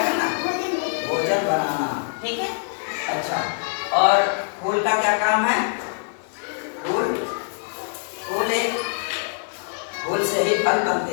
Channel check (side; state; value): right; silent; digital silence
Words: करना? भोजन बनाना, ठीक है। अच्छा, और फूल का क्या काम है? फूल फूल से ही फल